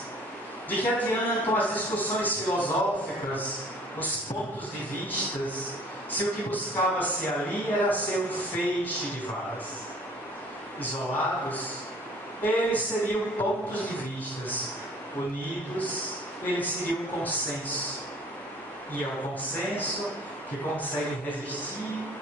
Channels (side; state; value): both; normal; correlation 0.52